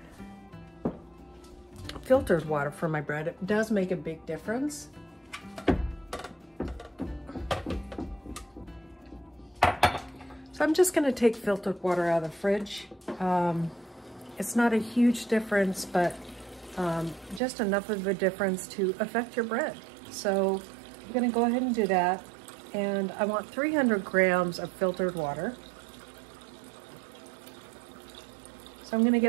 filtered water for my bread. It does make a big difference. So I'm just going to take filtered water out of the fridge. It's not a huge difference, but just enough of a difference to affect your bread. So I'm going to go ahead and do that, and I want 300 grams of filtered water. So I'm going to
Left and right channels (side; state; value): left; drops out; at 17.4 s